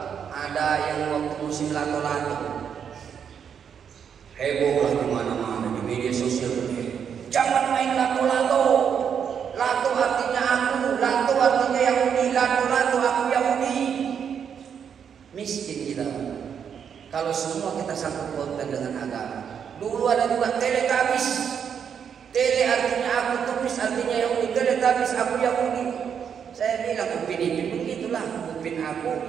Ada yang waktu musim lato-lato, heboh lah di mana-mana di media sosial ini. Jangan main lato-lato. Lato artinya aku, lato artinya Yahudi, lato-lato aku Yahudi. Miskin kita. Kalau semua kita sangkut pautkan dengan agama. Dulu ada juga teletabis. Tele artinya aku, tupis artinya Yahudi, teletabis aku Yahudi. Saya bilang upin-ipin begitulah, upin aku,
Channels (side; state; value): left; quieter; 7.6 dB